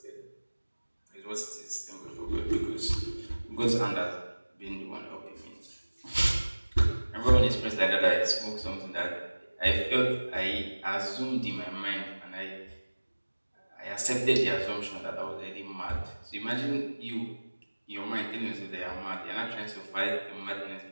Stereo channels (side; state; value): both; inverted; correlation -1.00